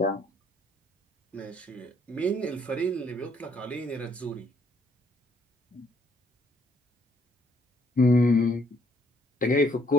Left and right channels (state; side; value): normal; both; correlation 0.68